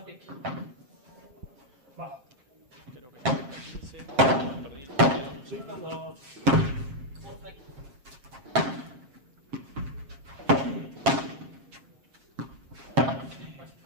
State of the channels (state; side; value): late; left; 7.5 ms